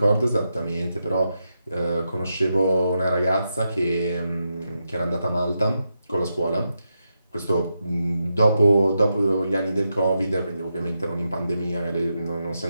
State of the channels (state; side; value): inverted; both; correlation -0.86